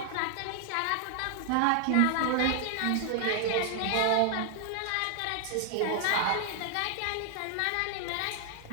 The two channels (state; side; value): different; both; correlation 0.00